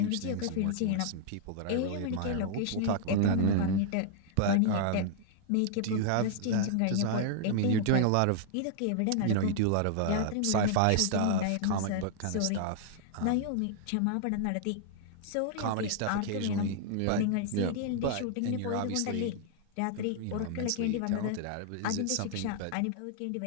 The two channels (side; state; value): both; different; correlation -0.01